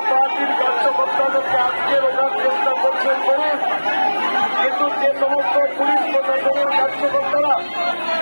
পার্টির কার্যকর্তাদেরকে আটকে রাখার চেষ্টা করছেন করুন। কিন্তু যে সমস্ত পুলিশ প্রশাসনের কার্যকর্তারা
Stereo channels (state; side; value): inverted; both; correlation -1.00